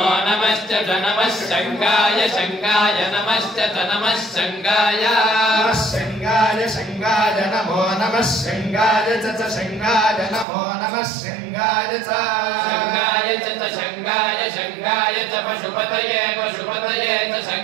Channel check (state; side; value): drops out; left; at 10.5 s